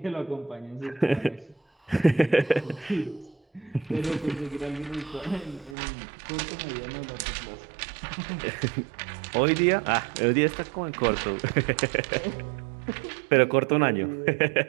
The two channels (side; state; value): left; drops out; at 5.8 s